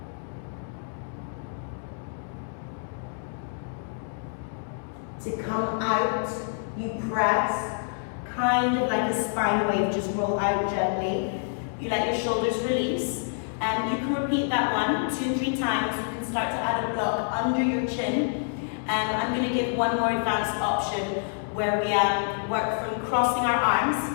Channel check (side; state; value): right; silent; 60 dB below the other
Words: To come out, you press, kind of like a spine wave, just roll out gently. You let your shoulders release. And you can repeat that 1, 2, 3 times. You can start to add a block under your chin. I'm going to give one more advanced option where we work from crossing our